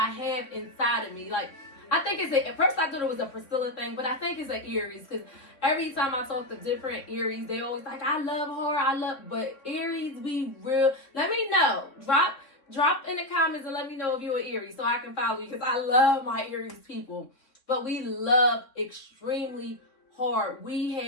have inside of me. Like, I think at first I thought it was a Priscilla thing, but I think it's an Aries, because every time I talk to different Aries, they always like, I love her, but Aries, we real. Let me know. Drop in the comments and let me know if you're an Aries so I can follow you, because I love my Aries people. But we love extremely hard. We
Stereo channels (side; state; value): right; late; 3.5 ms